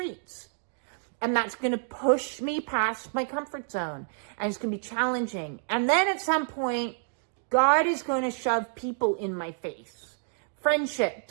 And that's going to push me past my comfort zone. And it's going to be challenging. And then at some point, God is going to shove people in my face.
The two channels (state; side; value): silent; left; digital silence